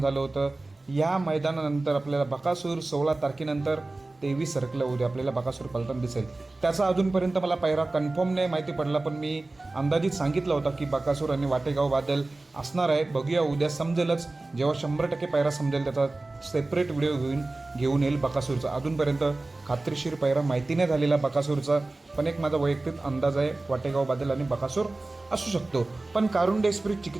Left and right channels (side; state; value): left; quieter; 3.1 dB